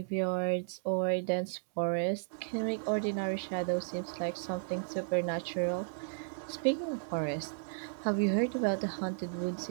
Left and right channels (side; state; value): left; silent; digital silence